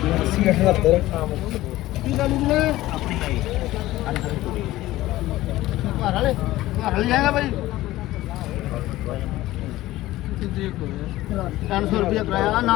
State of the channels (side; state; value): right; quieter; 16.4 dB